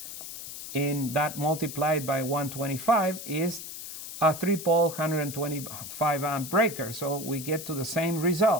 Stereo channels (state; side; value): noise; left; hiss, 10 dB below the sound